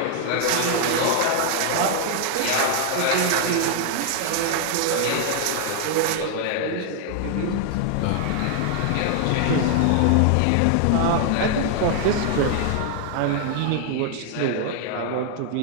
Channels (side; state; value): both; different; correlation 0.00